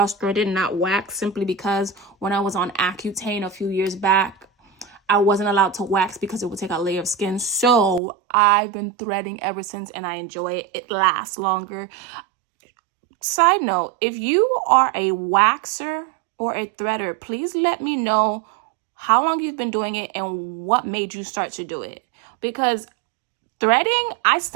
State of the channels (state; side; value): drops out; left; at 8.0 s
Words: threaded, not waxed, simply because when I was on Accutane a few years back, I wasn't allowed to wax because it would take a layer of skin. So I've been threading ever since, and I enjoy it. It lasts longer. Side note, if you are a waxer or a threader, please let me know how long you've been doing it and what made you start to do it. Because threading, I